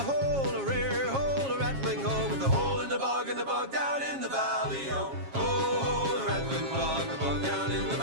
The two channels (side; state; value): left; late; 7.3 ms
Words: a rare hole, a rattling hole, with a hole in the bog and the bog down in the valley, oh. Oh, the rattling bog, the bog down in the